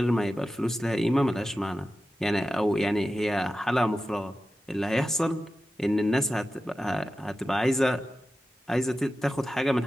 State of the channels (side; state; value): both; normal; correlation 0.93